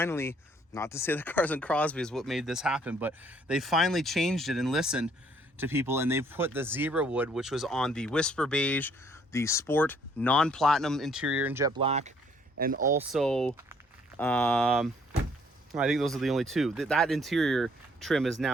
not to say the Cars and Crosbie is what made this happen, but they finally changed it and listened to people, and they've put the zebra wood, which was on the Whisper Beige, the sport non-platinum interior in jet black, and also I think those are the only two. That interior trim is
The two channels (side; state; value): both; normal; correlation 0.64